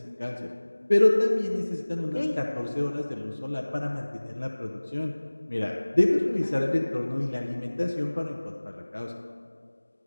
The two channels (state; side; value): inverted; both; correlation -1.00